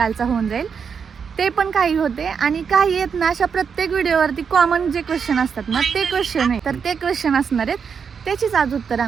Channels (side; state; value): left; quieter; 6.4 dB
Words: होऊन जाईल, ते पण काही होते. आणि काही आहेत ना अशा प्रत्येक व्हिडिओवरती कॉमन जे क्वेश्चन असतात ना ते क्वेश्चन आहे. तर ते क्वेश्चन असणार आहेत, त्याचीच आज उत्तर